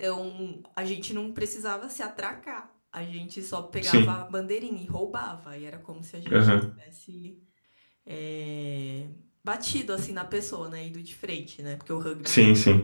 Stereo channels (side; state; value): both; inverted; correlation -1.00